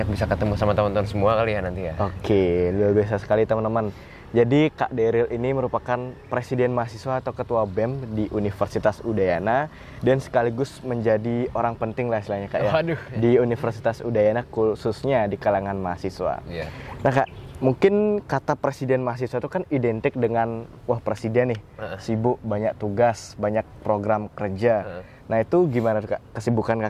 bisa ketemu sama teman-teman semua kali ya nanti ya. Oke, luar biasa sekali teman-teman. Jadi Kak Deril ini merupakan Presiden Mahasiswa atau Ketua BEM di Universitas Udayana dan sekaligus menjadi orang penting lah istilahnya Kak ya. Waduh. Di Universitas Udayana khususnya di kalangan mahasiswa. Iya. Nah Kak, mungkin kata Presiden Mahasiswa itu kan identik dengan wah presiden nih, sibuk, banyak tugas, banyak program kerja. Nah itu gimana tuh Kak kesibukan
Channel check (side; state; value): both; identical; correlation 1.00